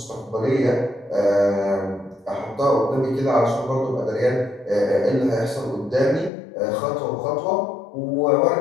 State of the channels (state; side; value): drops out; right; at 6.3 s